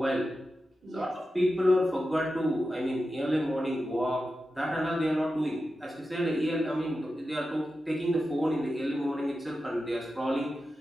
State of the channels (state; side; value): normal; both; correlation 0.91